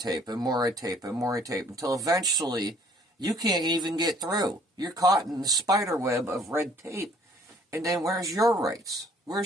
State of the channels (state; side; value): normal; both; correlation 0.59